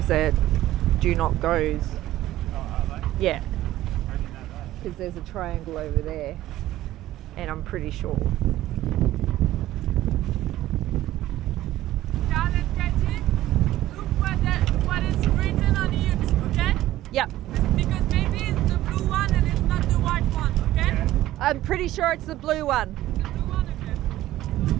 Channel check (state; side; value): quieter; left; 14.6 dB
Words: are do not goes. Oh, are they? Yeah, I didn't know that. because there's a triangle over there, and I'm pretty sure. Karl and Katty, look what is written on it, okay? Yep, Because maybe it's the blue one and it's not the white one, okay? Yeah. I'm pretty sure it's the blue one. The blue one,